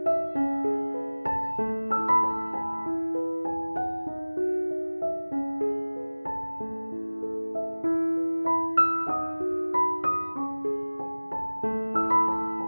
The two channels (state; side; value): inverted; both; correlation -1.00